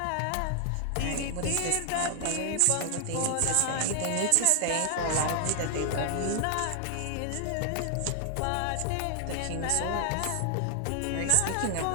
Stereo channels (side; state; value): both; different; correlation 0.00